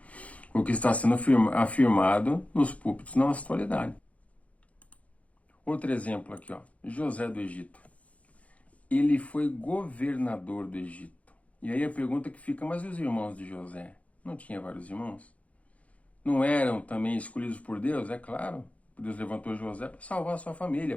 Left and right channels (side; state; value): right; late; 0.066 ms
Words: o que está sendo afirmado nos púlpitos na nossa atualidade. Outro exemplo aqui, José do Egito. Ele foi governador do Egito. E aí a pergunta que fica, mas e os irmãos de José? Não tinha vários irmãos? Não eram também escolhidos por Deus? É claro. Deus levantou José para salvar a sua família,